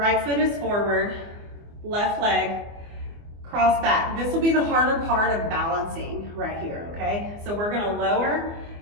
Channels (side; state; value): left; late; 24 ms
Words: foot is forward, left leg, cross back. This will be the harder part of balancing right here, okay? So we're gonna lower